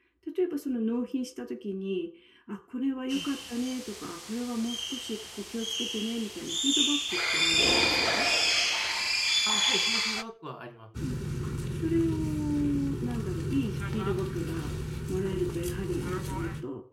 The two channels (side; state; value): both; identical; correlation 1.00